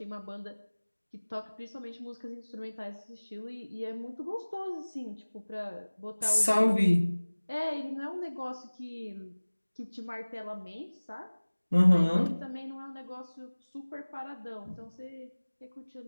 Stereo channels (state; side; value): inverted; both; correlation -1.00